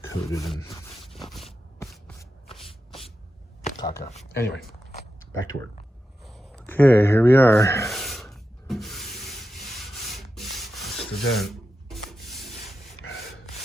Coated in caca. Anyway, back to work. Okay, here we are. That's the dent.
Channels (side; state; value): both; normal; correlation 0.90